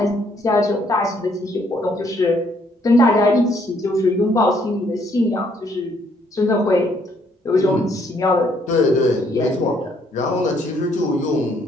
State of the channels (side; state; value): both; normal; correlation 0.68